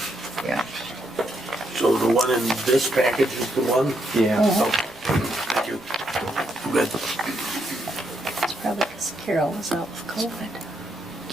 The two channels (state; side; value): noise; right; rumble, 28 dB below the sound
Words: Yeah. so the one in this package is the one? Yeah. Thank you. Good. It's probably because Carol was out with COVID.